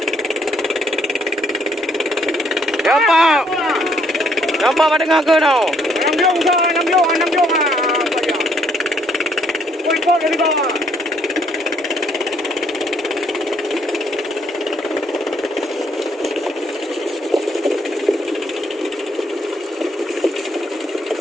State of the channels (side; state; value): both; normal; correlation 0.68